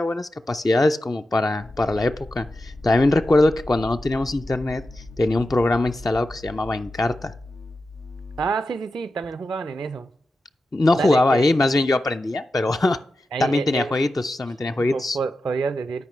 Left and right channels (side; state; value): both; normal; correlation 0.91